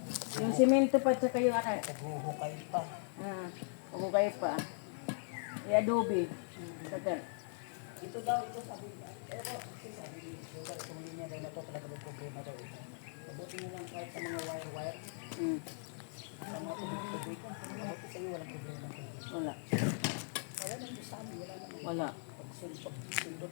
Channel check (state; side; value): silent; right; 52 dB below the other